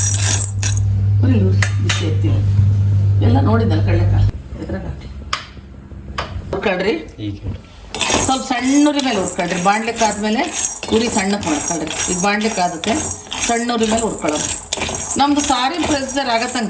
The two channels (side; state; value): both; identical; correlation 1.00